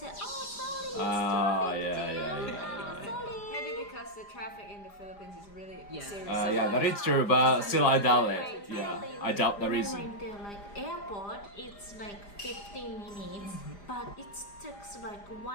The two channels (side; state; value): right; late; 5.0 ms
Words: oh, sorry, it's traffic jam. And sorry. Maybe because the traffic in the Philippines is really serious. Yeah, that is true, but still I doubt it. Yeah, I doubt the When I reason. went to like airport, it's like 15 minutes, but it takes like